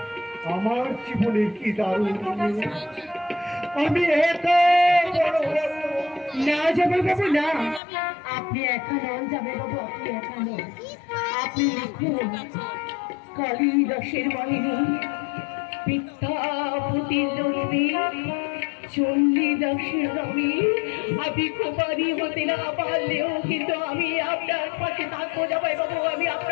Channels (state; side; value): drops out; right; at 7.8 s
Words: আমার জীবনে কি দারুণ। আমি এত বড় না জামাই বাবু, না, আপনি একা নন জামাই বাবু, আপনি একা নন। আপনি লিখুন কালিদাসের বাহিনী, বিদ্যাপতির লক্ষ্মী, চণ্ডীদাসের রবি। আমি কুমারী হতে না পারলেও কিন্তু আমি আপনার পাশে থাকবো জামাই বাবু, আমি